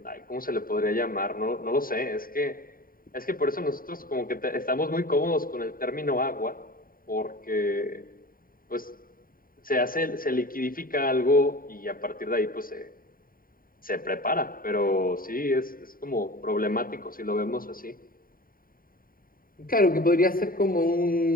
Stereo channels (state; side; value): late; right; 0.41 ms